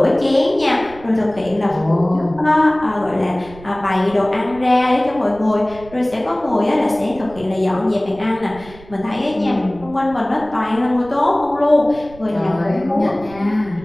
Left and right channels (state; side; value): noise; right; rumble, 20 dB below the sound